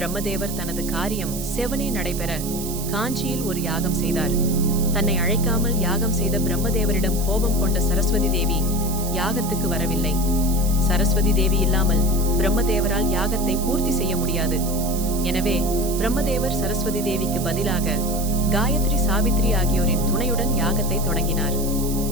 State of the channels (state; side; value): noise; right; hiss, 9 dB below the sound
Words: தனது காரியம் செவனே நடைபெற காஞ்சியில் ஒரு யாகம் செய்தார். தன்னை அழைக்காமல் யாகம் செய்த பிரம்மதேவரிடம் கோபம் கொண்ட சரஸ்வதி தேவி யாகத்துக்கு வரவில்லை. சரஸ்வதி தேவி இல்லாமல் பிரம்மதேவரால் யாகத்தை பூர்த்தி செய்ய முடியாது. எனவே பிரம்மதேவர் சரஸ்வதி தேவிக்கு பதிலாக காயத்ரி, சாவித்ரி ஆகியோரின் துணையுடன் யாகத்தை தொடங்கினார்.